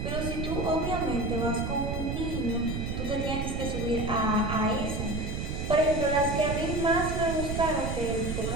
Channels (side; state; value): right; noise; rumble, 3 dB below the sound